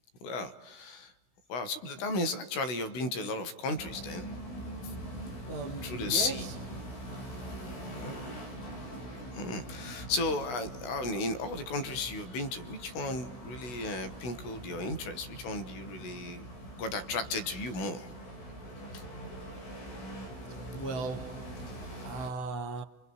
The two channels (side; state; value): right; late; 16 ms